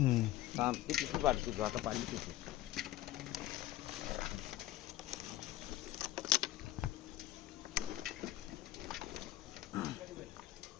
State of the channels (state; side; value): quieter; right; 14.6 dB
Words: थांब ती किती वाटते तू आता पाणी किती